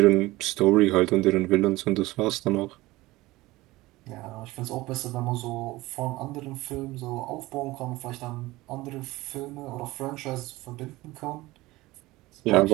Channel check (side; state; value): left; quieter; 19.4 dB